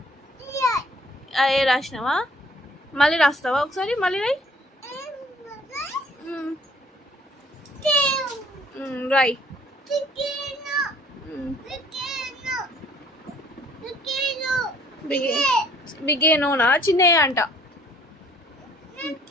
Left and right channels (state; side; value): normal; both; correlation 0.58